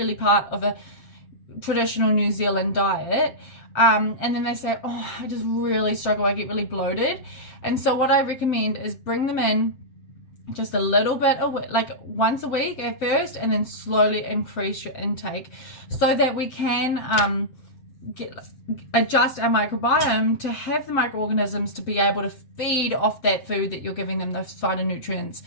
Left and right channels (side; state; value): right; late; 7.6 ms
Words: part of a traditional New Zealand diet. And then they say, oh, I just really struggle, I get really bloated. And so what I recommend is bring them in just a little bit, like once a week at first, and then slowly increase your intake so that we can adjust our microbiome to have the microorganisms to be able to feed off that food that you're giving them, those phytonutrients,